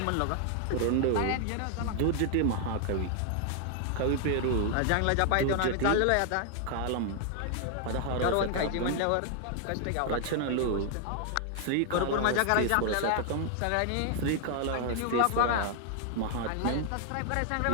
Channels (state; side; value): different; both; correlation 0.00